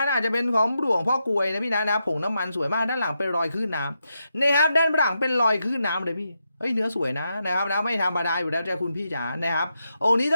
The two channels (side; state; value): both; inverted; correlation -0.85